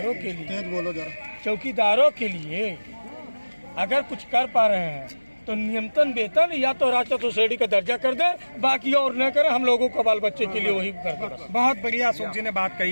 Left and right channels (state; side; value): inverted; both; correlation -1.00